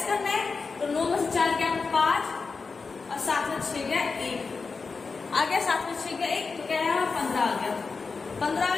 करना है, तो 9 में से 4 गया 5 और 7 में 6 गया 1 आ गया, 7 में 6 गया 1, तो क्या है 15 आ गया, 15 आ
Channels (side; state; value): right; quieter; 4.6 dB